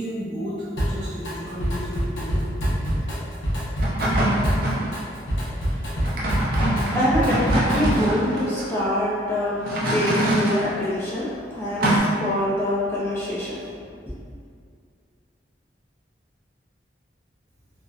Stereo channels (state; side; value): normal; both; correlation 0.60